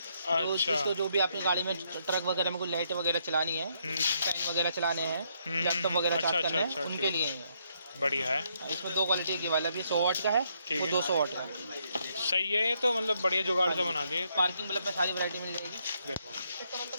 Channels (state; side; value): inverted; both; correlation -0.74